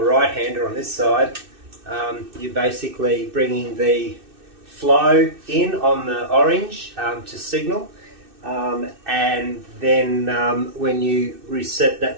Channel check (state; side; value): late; left; 2.6 ms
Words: right-hander on this side, you're basically bringing the flow in on the orange to signal, and then when you reset